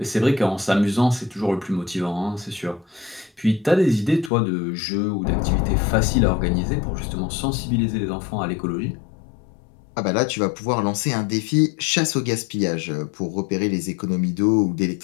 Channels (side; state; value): right; drops out; at 4.3 s